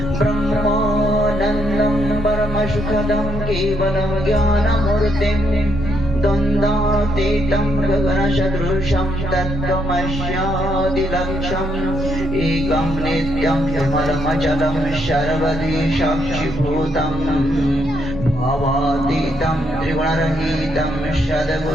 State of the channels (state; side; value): normal; both; correlation 0.75